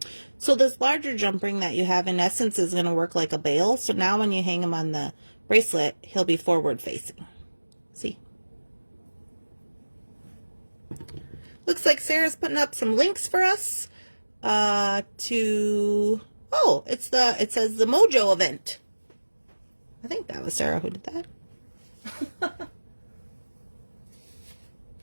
So this larger jump ring that you have in essence is going to work like a bail. So now when you hang him on the bracelet, he'll be forward facing. See? Looks like Sarah's putting up some links for us to, oh, it says the Mojo event. I think that was Sarah who did that.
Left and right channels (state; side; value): inverted; both; correlation -1.00